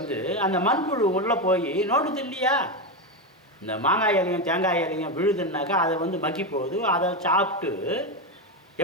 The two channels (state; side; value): normal; both; correlation 0.12